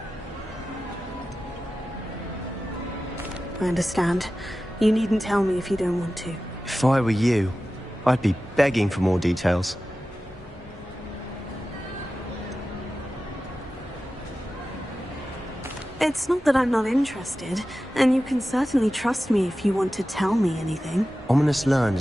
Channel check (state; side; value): normal; both; correlation 0.94